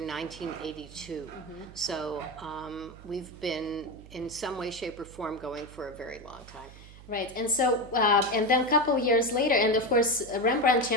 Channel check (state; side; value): noise; right; hum, 18 dB below the sound